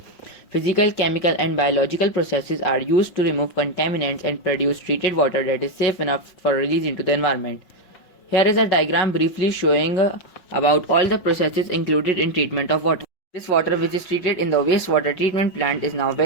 Physical, chemical and biological processes are used to remove contaminants and produce treated water that is safe enough for release into the environment. Here is a diagram briefly showing about all the processes included in treatment of water. This water which is treated in the wastewater treatment plant is now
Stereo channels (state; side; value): late; right; 5.6 ms